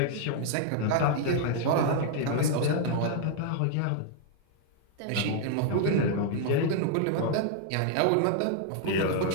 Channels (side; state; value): both; different; correlation 0.00